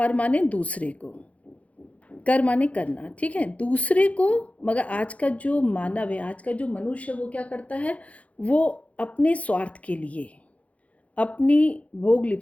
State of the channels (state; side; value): late; right; 0.066 ms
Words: माने दूसरे को, कर माने करना, ठीक है, दूसरे को। मगर आज का जो मानव है, आज का जो मनुष्य है, वो क्या करता है? वो अपने स्वार्थ के लिए, अपनी भोग